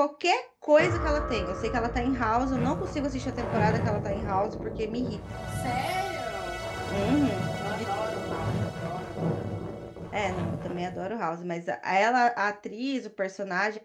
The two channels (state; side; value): identical; both; correlation 1.00